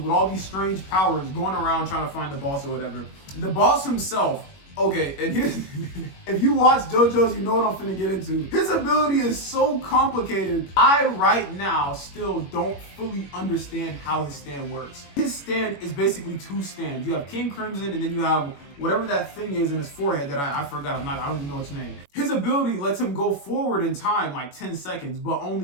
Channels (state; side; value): late; right; 21 ms